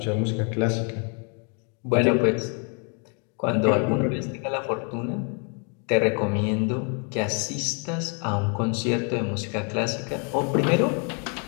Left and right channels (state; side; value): quieter; right; 38.3 dB